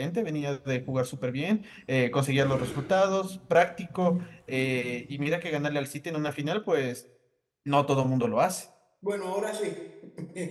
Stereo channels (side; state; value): both; identical; correlation 1.00